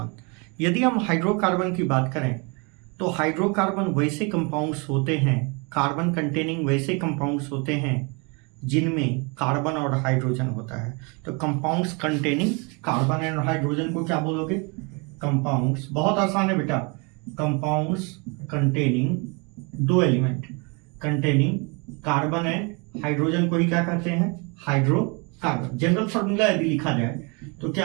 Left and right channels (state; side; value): quieter; left; 31.3 dB